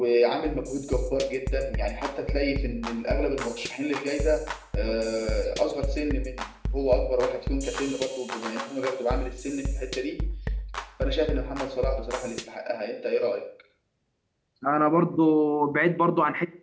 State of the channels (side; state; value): both; identical; correlation 1.00